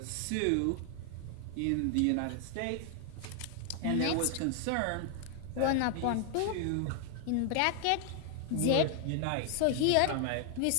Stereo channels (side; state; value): both; different; correlation 0.00